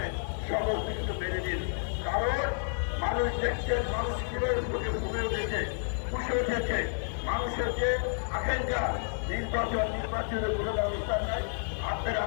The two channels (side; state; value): right; silent; 58 dB below the other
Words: সমস্ত কিছু মেনে দিন, কারণ মানুষ দেখছেন মানুষ কিভাবে ঘুমে উঠেছে, খুশি উঠেছে। মানুষের যে আকাঙ্ক্ষা নির্বাচনের কোনো ব্যবস্থা নাই। আপনারা